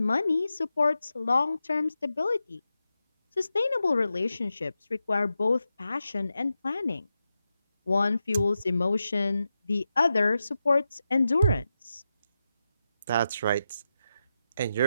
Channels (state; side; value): inverted; both; correlation -0.89